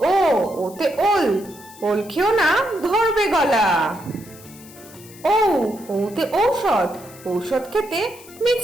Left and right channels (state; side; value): noise; left; hiss, 21 dB below the sound